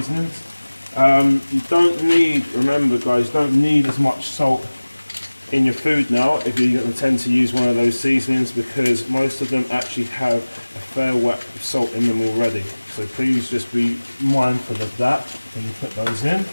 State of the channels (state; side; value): inverted; both; correlation -1.00